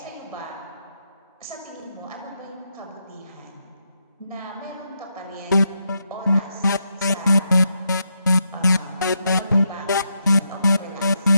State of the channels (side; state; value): both; inverted; correlation -0.82